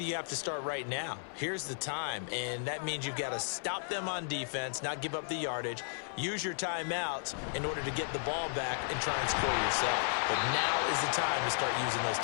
have to start right now. Here's the time, and that means you've got to stop them on defense, not give up the yardage, use your timeouts in order to get the ball back and try and score yourself. But now is the time to start using those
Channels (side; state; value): right; silent; 55 dB below the other